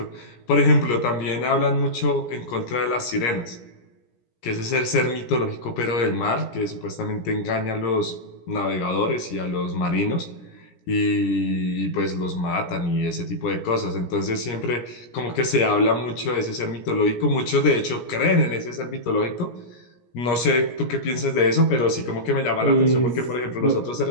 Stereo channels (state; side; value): late; right; 17 ms